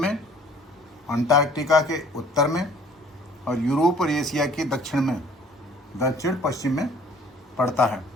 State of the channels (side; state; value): both; normal; correlation 0.54